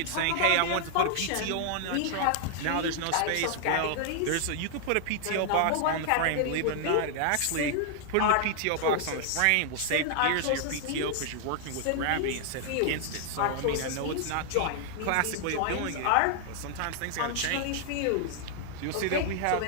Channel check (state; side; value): different; both; correlation 0.00